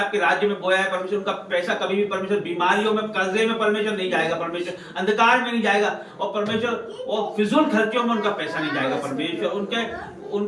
राज्य में बोया है परमेश्वर, उनका पैसा कभी भी परमेश्वर बीमारियों में, कर्जे में परमेश्वर नहीं जाएगा परमेश्वर, अंधकार में नहीं जाएगा। और परमेश्वर और फिजूल खर्चों में उनका पैसा नहीं जाएगा परमेश्वर।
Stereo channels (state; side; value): identical; both; correlation 1.00